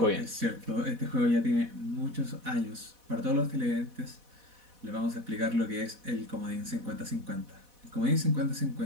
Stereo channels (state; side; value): late; left; 4.1 ms